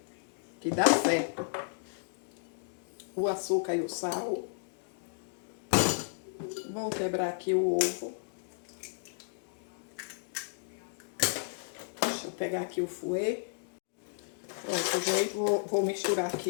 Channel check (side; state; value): right; silent; digital silence